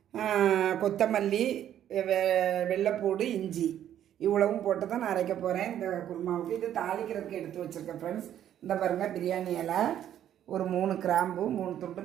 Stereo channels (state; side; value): quieter; left; 10.8 dB